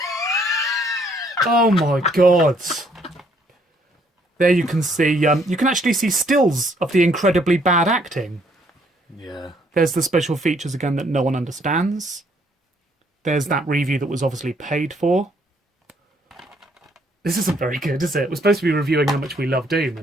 Oh my god. There you can see, you can actually see stills of the incredibly bad acting. Yeah. There's the special features again that no one understands. There's that review that was obviously paid for. This isn't very good, is it? We're supposed to be reviewing how much we love Doom.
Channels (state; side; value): normal; both; correlation 0.67